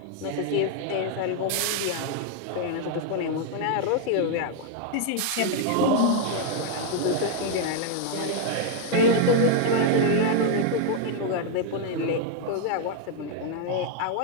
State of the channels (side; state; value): both; different; correlation 0.00